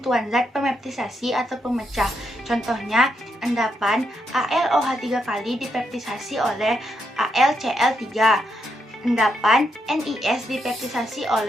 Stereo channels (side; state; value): both; normal; correlation 0.80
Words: zat pemeptisasi atau pemecah. Contohnya, endapan AlOH 3 kali dipeptisasi oleh AlCl3. Endapan NiS dipeptisasi